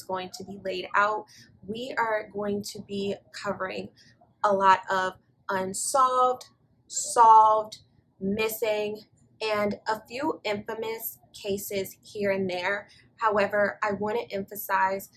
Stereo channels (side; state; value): both; identical; correlation 1.00